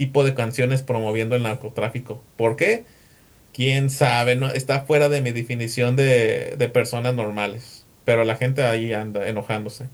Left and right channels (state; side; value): identical; both; correlation 1.00